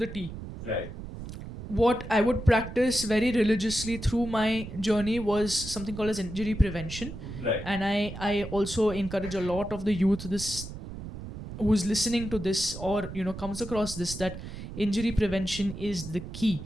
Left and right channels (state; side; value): noise; right; rumble, 10 dB below the sound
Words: T. Right. What I would practice very religiously through my journey was something called as injury prevention. Right. And I also encourage a lot of the youth who's listening to this or comes across this, that injury prevention is the key.